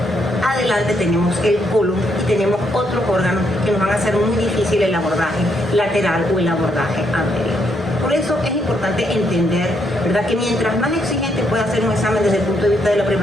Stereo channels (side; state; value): both; normal; correlation 0.75